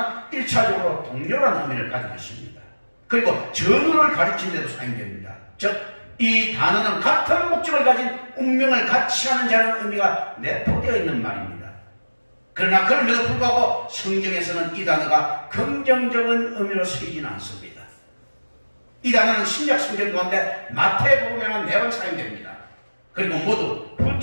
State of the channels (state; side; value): inverted; both; correlation -1.00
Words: 1차적으로 동료라는 의미를 가지고 있습니다. 그리고 전우를 가르치는 데도 사용됩니다. 즉, 이 단어는 같은 목적을 가진 운명을 같이 하는 자라는 의미가 내포되어 있는 말입니다. 그러나 그럼에도 불구하고 성경에서는 이 단어가 긍정적인 의미로 쓰이지는 않습니다. 이 단어는 신약 성경 가운데 마태복음에만 4번 사용됩니다. 그리고 모두